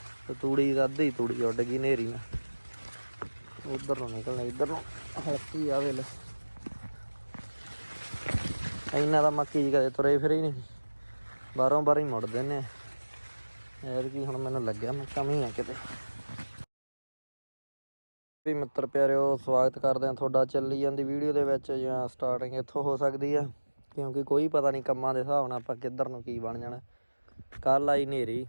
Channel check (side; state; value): both; inverted; correlation -1.00